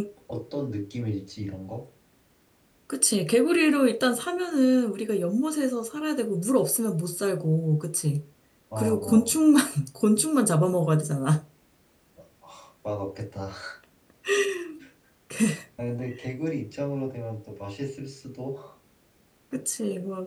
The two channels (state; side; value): identical; both; correlation 1.00